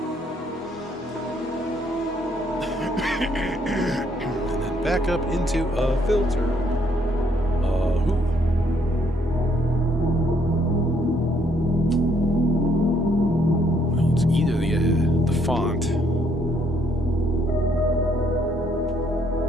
And then back up into a filter. Well, it's either the font.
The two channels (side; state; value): both; normal; correlation 0.69